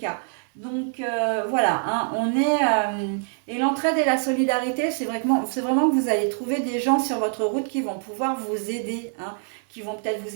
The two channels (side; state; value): left; silent; 62 dB below the other